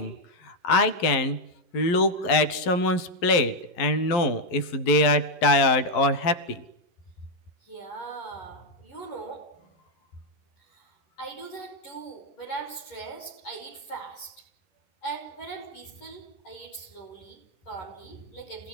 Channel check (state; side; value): late; right; 11 ms